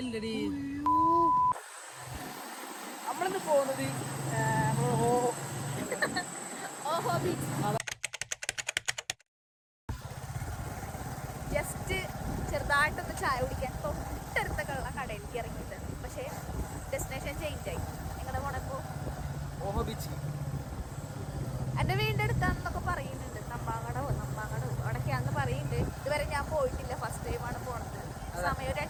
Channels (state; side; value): identical; both; correlation 1.00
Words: നമ്മളിന്ന് പോകുന്നത് ഓഹോ ബീച്ച്. ജസ്റ്റ് ചെറുതായിട്ടൊന്ന് ചായ കുടിക്കാൻ തൊട്ടടുത്തൊക്കെയുള്ള കടയിലേക്ക് ഇറങ്ങിയിട്ടുണ്ട്. പക്ഷേ ഡെസ്റ്റിനേഷൻ ചേഞ്ച് ആയി. നിങ്ങളുടെ പോണപ്പോ ഓഹോ ബീച്ച് എൻ്റെ വീടിൻ്റെ അടുത്താണെന്നൊക്കെ പറയുന്നുണ്ട്. നമ്പാങ്ങടോ അവിടൊക്കെയാണെന്ന് പറയുന്നുണ്ട്. ഇതുവരെ ഞാൻ പോയിട്ടില്ല, ഫസ്റ്റ് ടൈമാണ് പോണത്. സമയം ഒരു